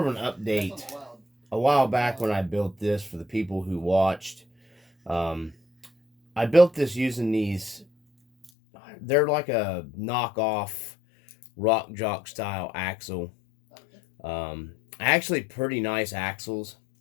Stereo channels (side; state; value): right; drops out; at 8.5 s